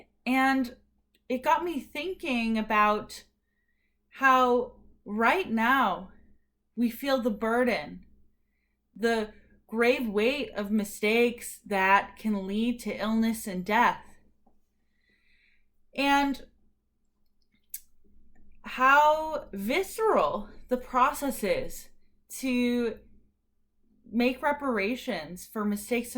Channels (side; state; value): both; identical; correlation 1.00